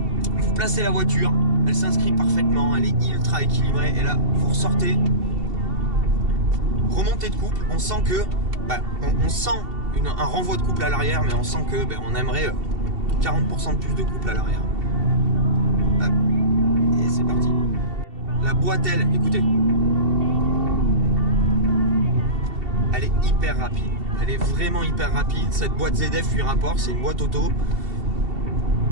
vous placez la voiture, elle s'inscrit parfaitement, elle est ultra équilibrée et là vous ressortez, remontée de couple, on sent que on sent un renvoi de couple à l'arrière, mais on sent que on aimerait 40% de plus de couple à l'arrière. boîte-aile, écoutez. Elle est hyper rapide. Elle est vraiment hyper rapide. Cette boîte ZF 8 rapports, c'est une boîte auto.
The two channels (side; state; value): left; late; 2.7 ms